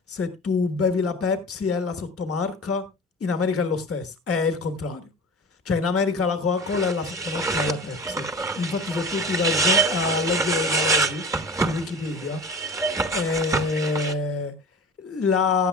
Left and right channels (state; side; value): normal; both; correlation 0.36